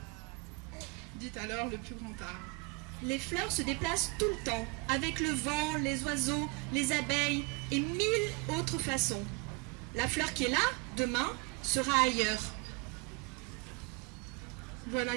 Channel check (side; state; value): left; quieter; 28.4 dB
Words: Dit alors le plus grand arbre. Les fleurs se déplacent tout le temps, avec le vent, les oiseaux, les abeilles et 1000 autres façons. La fleur qui est là, demain, sera ailleurs.